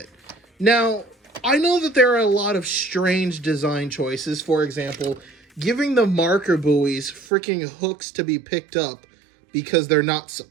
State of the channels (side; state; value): left; drops out; at 7.2 s